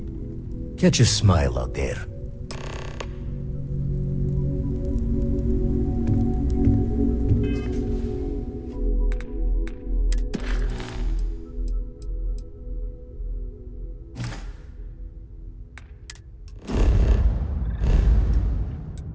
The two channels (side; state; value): both; identical; correlation 1.00